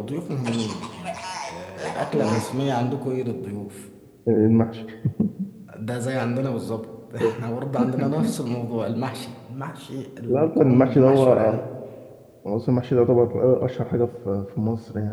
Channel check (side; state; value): both; identical; correlation 1.00